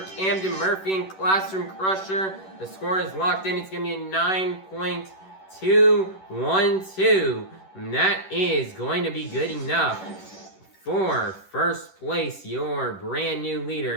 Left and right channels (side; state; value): right; late; 11 ms